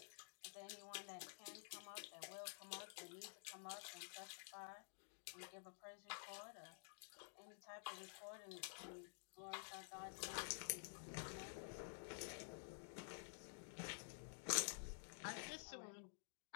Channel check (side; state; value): right; silent; digital silence